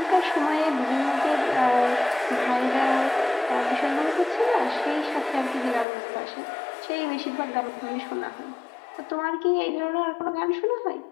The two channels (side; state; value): right; drops out; at 5.9 s